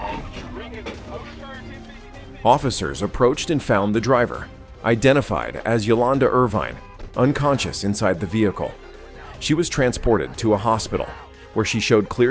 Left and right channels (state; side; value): identical; both; correlation 1.00